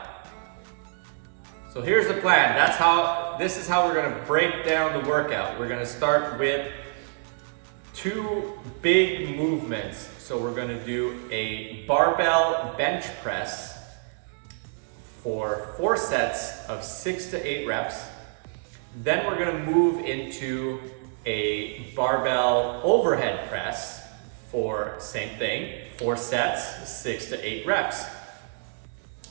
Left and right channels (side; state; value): left; silent; 60 dB below the other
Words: So here's the plan. This is how we're gonna break down the workout. We're gonna start with 2 big movements. So we're gonna do a barbell bench press for 4 sets of 6 to 8 reps. Then we're gonna move into a barbell overhead press for same thing, 4 sets, 6 to 8 reps.